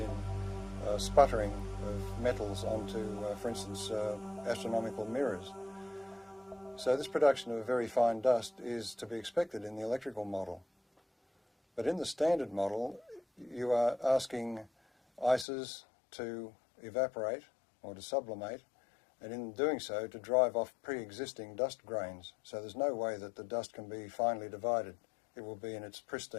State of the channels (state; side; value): drops out; right; at 15.5 s